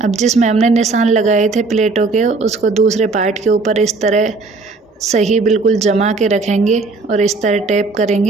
जिसमें हमने निशान लगाए थे प्लेटों के, उसको दूसरे पार्ट के ऊपर इस तरह सही बिल्कुल जमा के रखेंगे और इस तरह टैप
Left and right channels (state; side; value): quieter; left; 3.8 dB